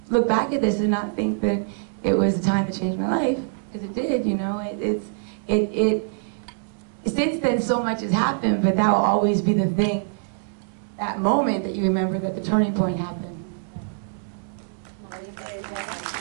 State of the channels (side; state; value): left; silent; digital silence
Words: look back at this and not think that it was a time to change my life, because it did. You know, since then, so much has happened, but that will always be the thing, that moment that you remember that the turning point happened.